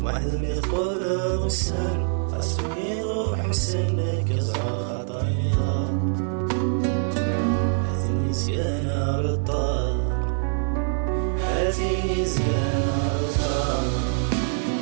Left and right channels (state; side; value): silent; left; digital silence